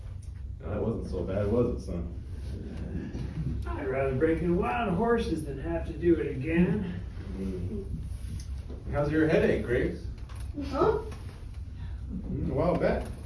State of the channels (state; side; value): identical; both; correlation 1.00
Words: No, that wasn't so bad, was it, son? I'd rather break in wild horses than have to do it again. How's your headache, Grace? Huh? A while back,